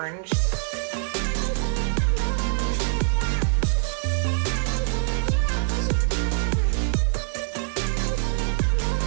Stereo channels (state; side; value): silent; left; digital silence